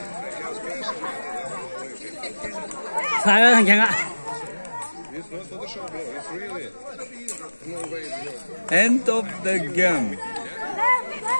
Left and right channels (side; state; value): both; inverted; correlation -1.00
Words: Sai rồi thằng Khang ạ. End of the game.